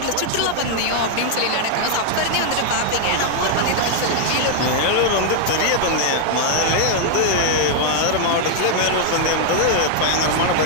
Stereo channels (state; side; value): different; both; correlation 0.00